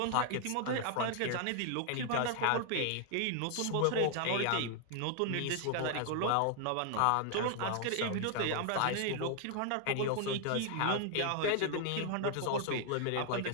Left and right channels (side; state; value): both; different; correlation 0.00